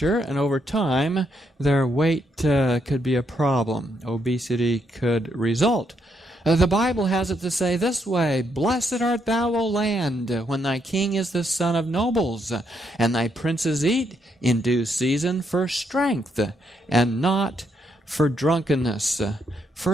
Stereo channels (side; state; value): both; normal; correlation 0.77